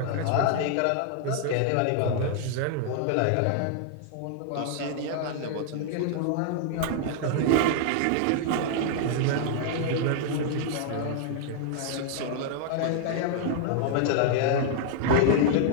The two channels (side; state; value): both; different; correlation -0.01